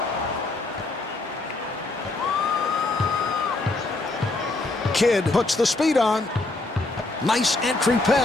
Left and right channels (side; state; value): right; quieter; 3.0 dB